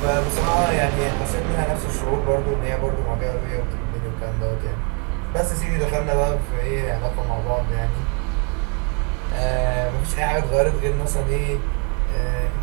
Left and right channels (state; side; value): quieter; left; 33.8 dB